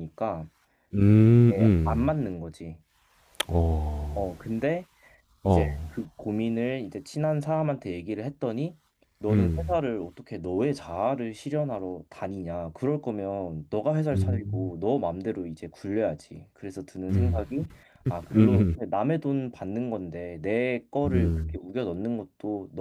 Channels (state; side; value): identical; both; correlation 1.00